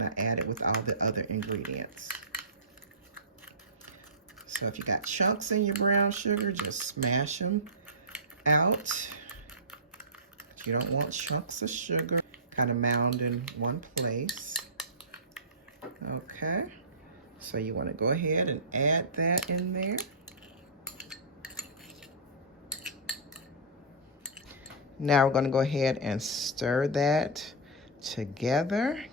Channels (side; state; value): both; normal; correlation -0.19